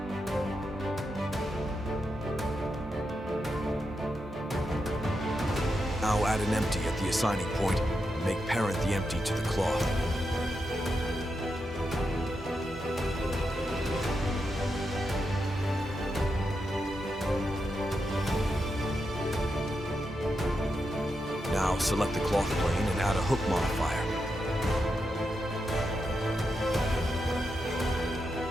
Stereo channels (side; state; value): both; normal; correlation 0.86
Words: Now add an empty at the assigning point and make parent the empty to the cloth. Now select the cloth plane and add a hook modifier.